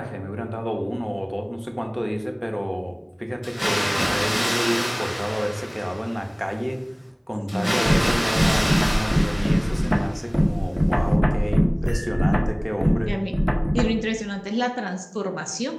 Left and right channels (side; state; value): both; identical; correlation 1.00